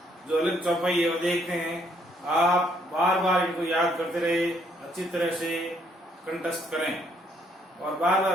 जो अलग चौपाई है वो देखते हैं। आप बार बार इनको याद करते रहे, अच्छी तरह से कंठस्थ करें और बार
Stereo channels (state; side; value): normal; both; correlation 0.69